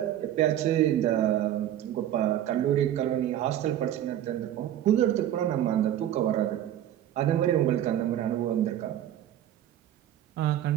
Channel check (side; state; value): left; quieter; 11.7 dB